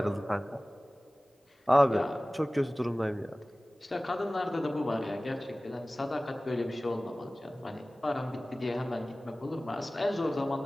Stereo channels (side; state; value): both; normal; correlation 0.98